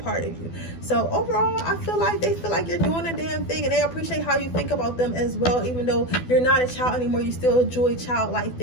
of you. So overall, I feel like they feel like you're doing a damn thing, and they appreciate how you think about them as well. Even though you're not a child anymore, you still enjoy childlike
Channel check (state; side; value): late; right; 12 ms